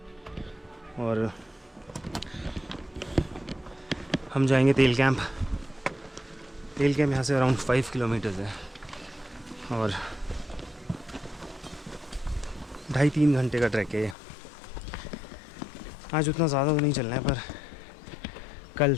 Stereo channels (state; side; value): drops out; right; at 14.2 s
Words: और हम जाएंगे तेल कैंप। तेल कैंप यहाँ से अराउंड 5 किलोमीटर्स है और 2.5-3 घंटे का ट्रैक है ये। आज उतना ज़्यादा तो नहीं चलना है पर कल